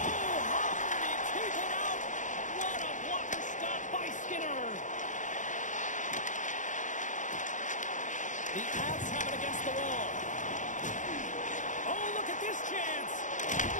how did he keep it out? What a blocker stop by Skinner. The Avs have it against the wall. Oh, look at this chance.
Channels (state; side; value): late; right; 0.36 ms